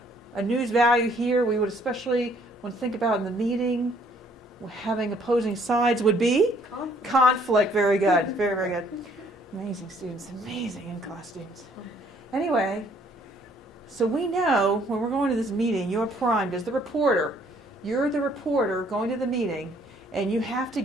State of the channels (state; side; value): normal; both; correlation 0.63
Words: a news value here we would especially want to think about in the meeting, having opposing sides would be? Conflict. Very good. Very, very good. Amazing students. Amazing in-class students. Anyway, so we know when we're going to this meeting, you're primed as the reporter. You're the reporter going to the meeting, and you have to